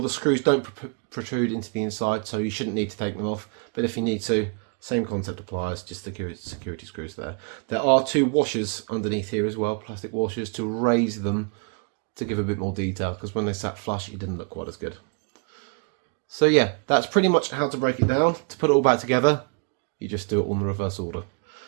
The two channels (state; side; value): quieter; left; 36.6 dB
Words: the screws don't protrude into the inside, so you shouldn't need to take them off. But if you need to, same concept applies, just security screws there. There are 2 washers underneath here as well, plastic washers, to raise them to give a bit more detail, because when they sat flush, it didn't look quite as good. So yeah, that's pretty much how to break it down. To put it all back together, you just do it on the reverse order.